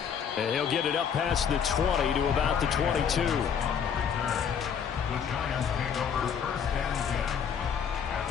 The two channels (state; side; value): quieter; right; 7.4 dB